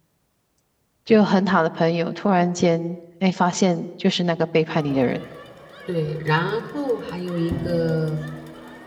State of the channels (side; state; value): both; identical; correlation 1.00